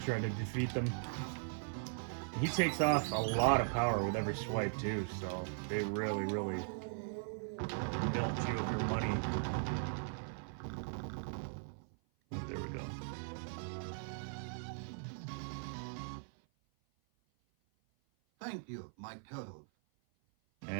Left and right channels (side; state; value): left; silent; 52 dB below the other